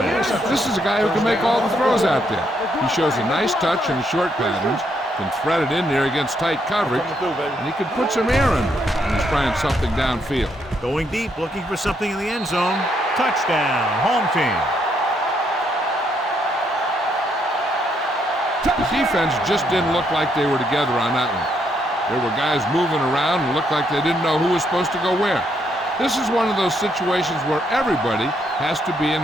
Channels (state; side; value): normal; both; correlation 0.75